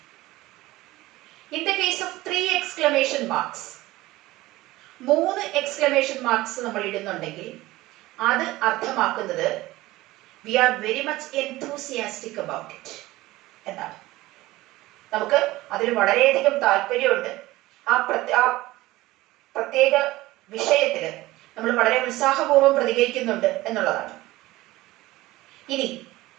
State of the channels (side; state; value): left; quieter; 18.3 dB